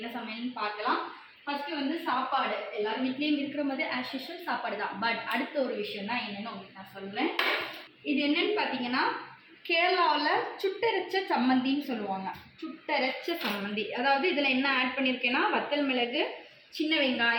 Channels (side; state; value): both; identical; correlation 1.00